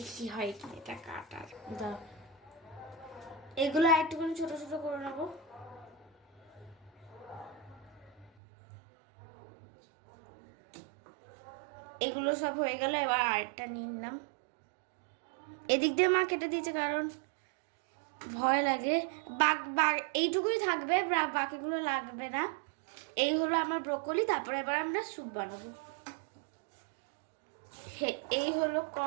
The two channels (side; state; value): left; drops out; at 8.3 s